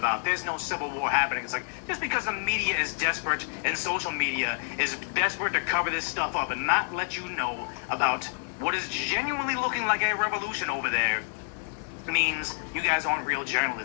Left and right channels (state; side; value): silent; right; 59 dB below the other